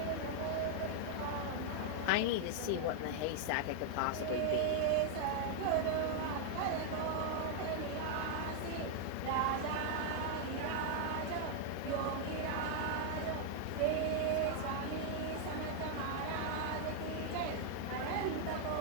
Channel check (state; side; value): different; both; correlation -0.01